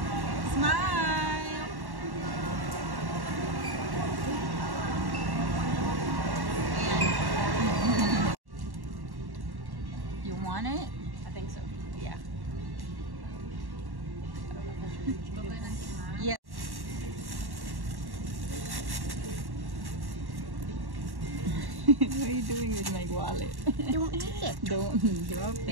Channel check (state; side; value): late; left; 1.1 ms